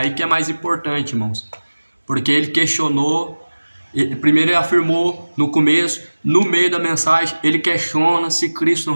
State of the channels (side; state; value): both; inverted; correlation -1.00